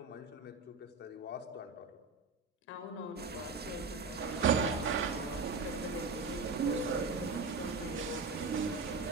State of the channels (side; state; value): left; quieter; 4.3 dB